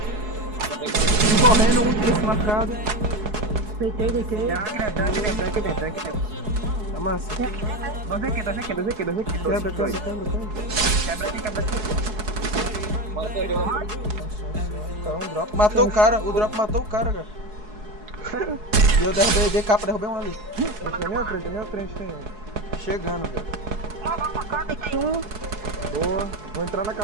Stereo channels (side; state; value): left; late; 4.7 ms